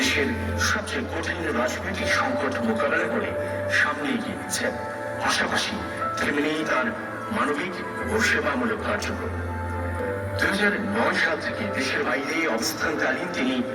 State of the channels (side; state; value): both; identical; correlation 1.00